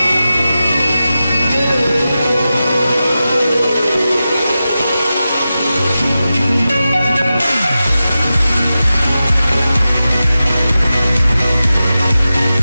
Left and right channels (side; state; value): both; inverted; correlation -0.93